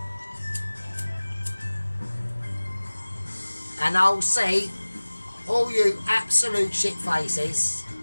And I'll see all you absolute shit faces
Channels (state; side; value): inverted; both; correlation -1.00